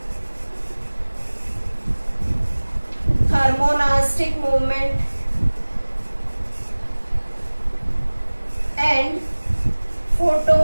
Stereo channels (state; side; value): inverted; both; correlation -1.00